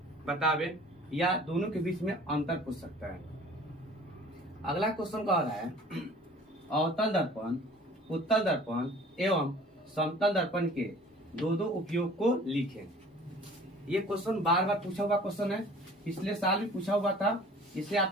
बतावे, या दोनों के बीच में अंतर पूछ सकता है। अगला क्वेश्चन कह रहा है अवतल दर्पण, उत्तल दर्पण एवं समतल दर्पण के दो उपयोग को लिखें। ये क्वेश्चन बार बार पूछा हुआ क्वेश्चन है, पिछले साल भी पूछा हुआ था, इसे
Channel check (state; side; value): normal; both; correlation 0.48